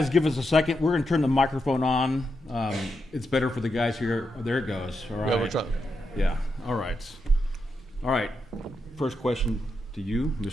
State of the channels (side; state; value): both; normal; correlation 0.84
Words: give us a second, we're gonna turn the microphone on. It's better for the guys here. Oh, there it goes. All right. Yeah, we're trying. Yeah, all right. All right, first question to you,